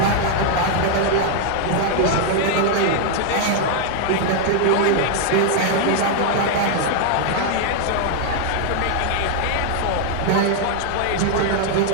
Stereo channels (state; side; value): different; both; correlation 0.00